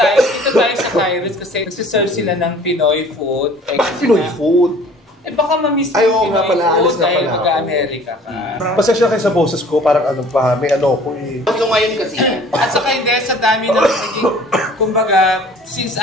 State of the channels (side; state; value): both; normal; correlation 0.50